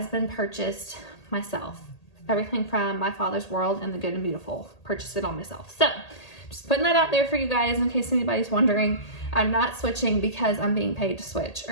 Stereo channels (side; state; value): right; late; 1.8 ms